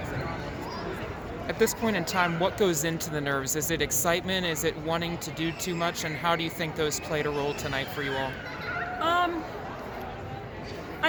on. At this point in time, what goes into the nerves? Is it excitement? Is it wanting to do too much? And how do you think those played a role tonight for you all?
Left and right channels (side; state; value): both; identical; correlation 1.00